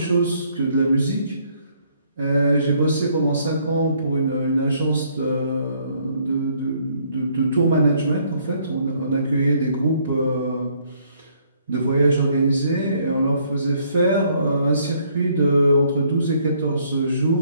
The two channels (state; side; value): inverted; both; correlation -0.66